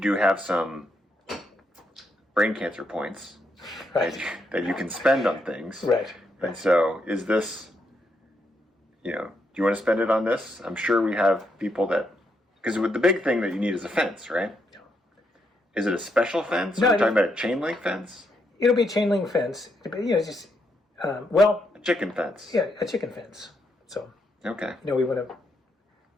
have some brain cancer points. Right. that you can spend on things. Right. And so is this, do you want to spend it on this? I'm sure we have people because the big thing that you need is a fence, right? Yeah. Is it a special fence? No, Are we talking about a chain link fence? It'll be a chain link fence. A chicken fence. Yeah, a chicken fence. So. Okay. We want to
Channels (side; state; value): both; normal; correlation 0.78